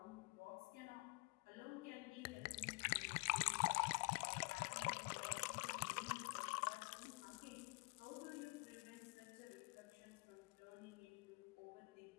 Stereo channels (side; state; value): right; quieter; 30.0 dB